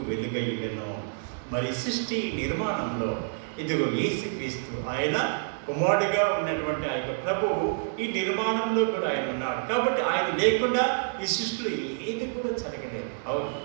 వెలుగయ్యను. మరి సృష్టి నిర్మాణంలో ఇదిగో యేసుక్రీస్తు ఆయన కుమారుడిగా ఉన్నటువంటి ఆ యొక్క ప్రభువు ఈ నిర్మాణంలో కూడా ఆయన ఉన్నాడు. కాబట్టి ఆయన లేకుండా ఈ సృష్టిలో ఏది కూడా జరగలేదు. అవును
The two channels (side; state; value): left; silent; digital silence